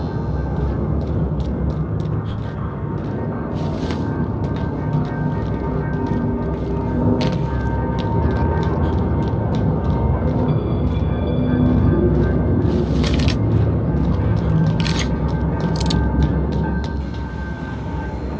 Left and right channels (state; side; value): identical; both; correlation 1.00